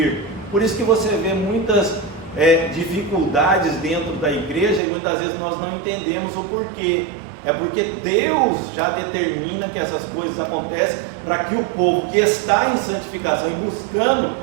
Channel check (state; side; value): drops out; left; at 4.8 s